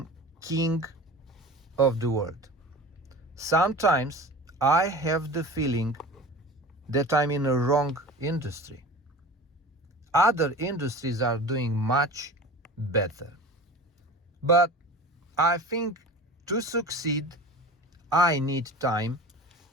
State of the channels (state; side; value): normal; both; correlation 0.36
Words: king of the world. Sometimes I have the feeling that I'm in a wrong industry. Other industries are doing much better. But I think to succeed, I need time.